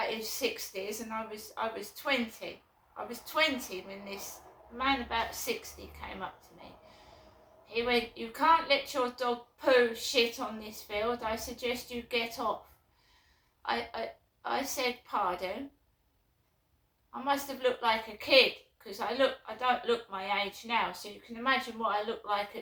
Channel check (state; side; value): identical; both; correlation 1.00